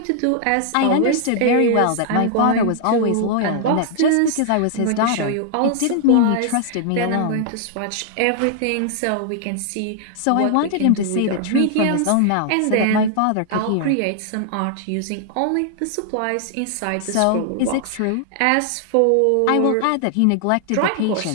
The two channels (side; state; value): both; different; correlation 0.00